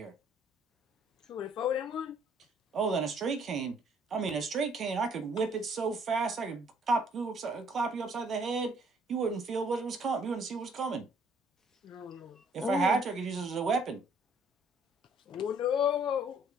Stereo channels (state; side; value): normal; both; correlation 0.62